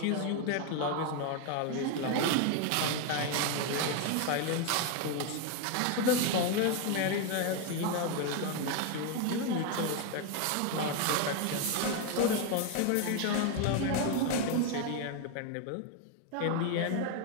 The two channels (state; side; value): different; both; correlation 0.01